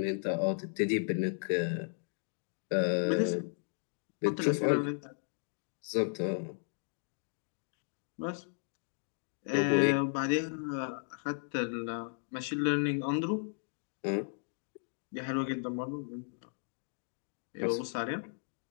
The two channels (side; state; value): right; silent; digital silence